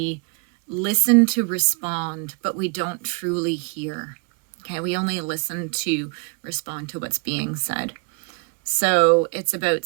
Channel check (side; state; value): left; quieter; 34.6 dB